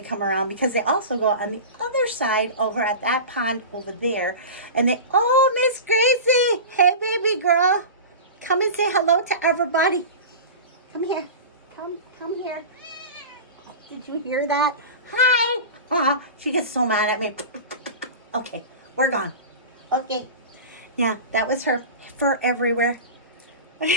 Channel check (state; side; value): inverted; both; correlation -0.30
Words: come around, because they also go on the other side over at that pond over there. And Miss Gracie, hey baby girl, come and say hello to everybody. Come here. Come here. Did you hear that? Hi. She gets so mad at me. Okay, we're gone. Okay. Yeah, that was her fur everywhere.